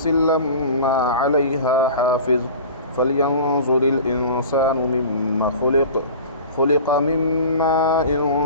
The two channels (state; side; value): inverted; both; correlation -0.38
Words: لما عليها حافظ فلينظر الإنسان مما خلق من ماء